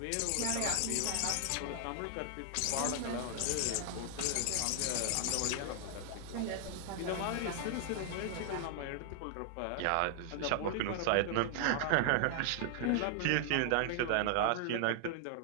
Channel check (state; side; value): different; both; correlation 0.00